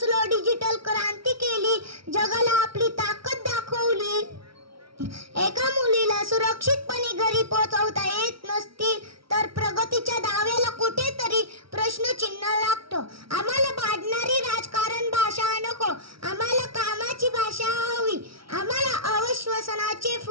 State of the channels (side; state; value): left; late; 0.75 ms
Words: डिजिटल क्रांती केली, जगाला आपली ताकद दाखवली. एका मुलीला सुरक्षितपणे घरी पोहोचवता येत नसतील तर प्रगतीच्या दाव्याला कुठेतरी प्रश्नचिन्ह लागतो. आम्हाला भांडणारी राजकारण भाषा नको, आम्हाला कामाची भाषा हवी. आम्हाला अविश्वासनाचे